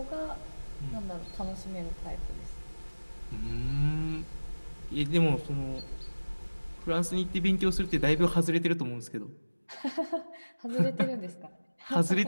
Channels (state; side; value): inverted; both; correlation -1.00